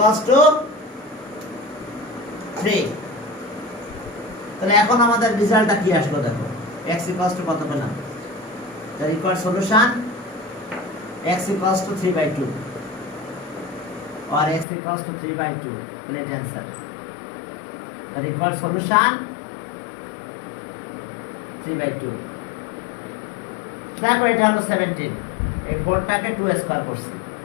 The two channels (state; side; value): drops out; right; at 14.7 s